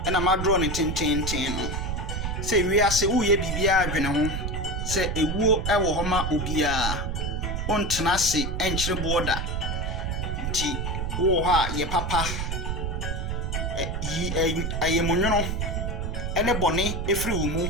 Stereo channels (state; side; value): noise; right; rumble, 2 dB below the sound